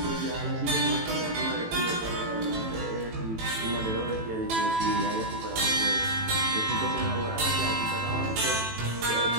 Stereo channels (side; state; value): left; late; 18 ms